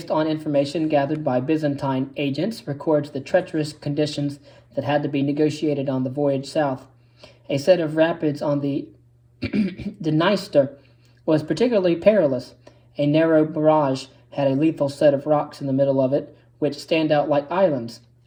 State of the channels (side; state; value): both; identical; correlation 1.00